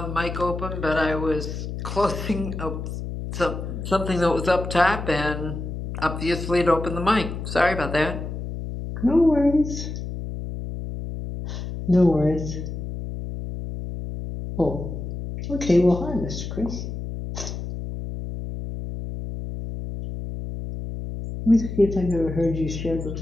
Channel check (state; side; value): noise; left; hum, 6 dB below the sound